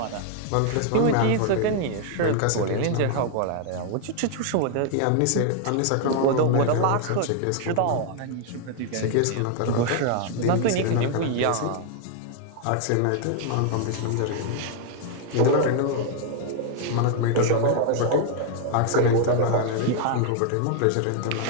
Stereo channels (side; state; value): both; different; correlation 0.00